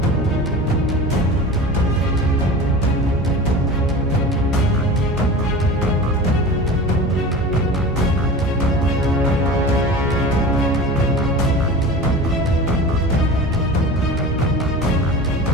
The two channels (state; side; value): normal; both; correlation 0.35